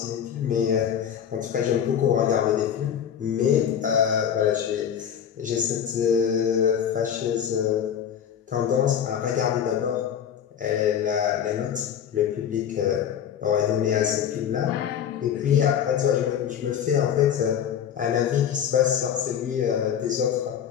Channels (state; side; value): quieter; right; 8.9 dB